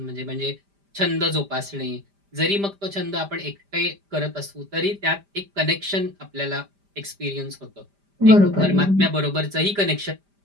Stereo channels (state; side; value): late; left; 5.0 ms